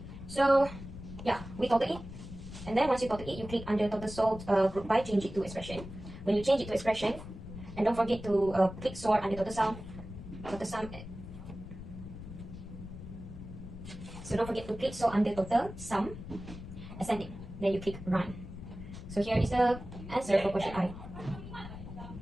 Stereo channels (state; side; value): noise; left; rumble, 12 dB below the sound